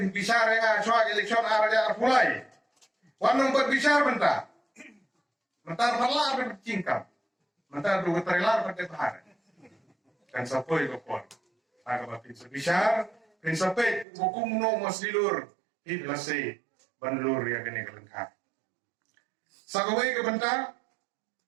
bicara nga soal eleksyon ara pulai. Wanong berbicara bentar. Bentar parlar bercingkap. Bentar dua trailer pada bahar. Kan sapoi ko por. Aga ba bicara prinsipnya hukum no masilur hiblase banlur ya gene kelengkap. Sagawai ke bentar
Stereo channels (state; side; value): drops out; left; at 14.1 s